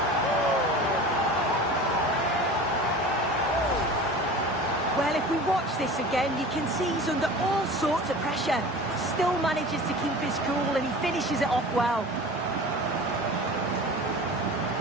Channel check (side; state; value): both; normal; correlation 0.37